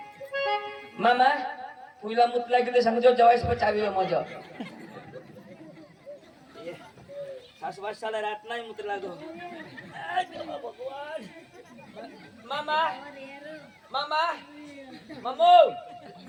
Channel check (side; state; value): both; identical; correlation 1.00